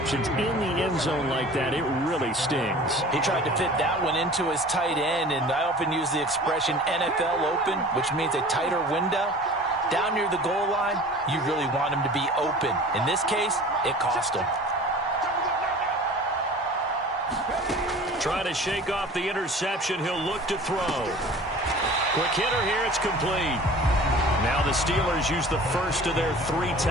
in the end zone like that, it really stings. He tried to fit that one into his tight end, and I often use the expression NFL open, which means a tighter window. Down near the goal line, you really want him to be open. In this case, it cost him. Trying to shake off the interception, he'll look to throw. Quick hitter here, it's complete. Now the Steelers use the first of their 3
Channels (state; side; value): normal; both; correlation 0.43